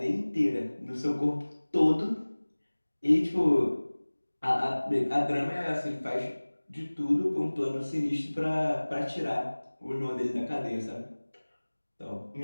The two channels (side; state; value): both; inverted; correlation -1.00